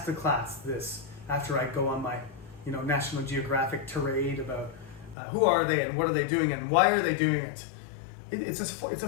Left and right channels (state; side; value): drops out; right; at 5.2 s